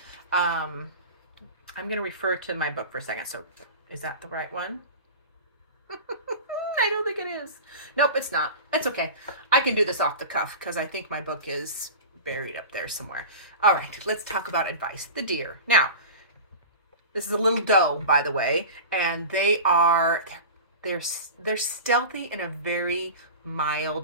I'm going to refer to my book for a second. So is that the right one? I don't think it is. Nope, it's not. It's okay. I can do this off the cuff because I think my book is buried up there somewhere. All right, let's talk about advice. The deer. Now, this is a little doe, by the way, and they're stealthy in a very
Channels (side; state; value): both; inverted; correlation -0.32